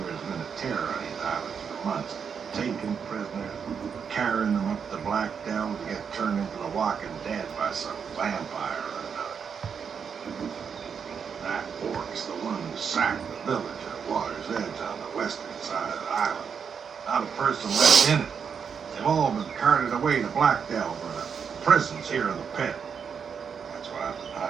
have been a terror on these islands for months. Taking prisoners, carrying them up to Blackdelve to get turned into the Walking Dead by some vampire or another. That orc's the one who sacked the village at Water's Edge on the western side of the island. Not a person left in it. They've all been carted away to Blackdelve or the prisons here in the pit. That's why I've been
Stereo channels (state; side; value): quieter; left; 6.7 dB